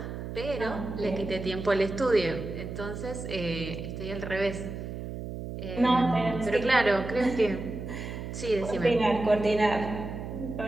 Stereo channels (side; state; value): right; noise; hum, 7 dB below the sound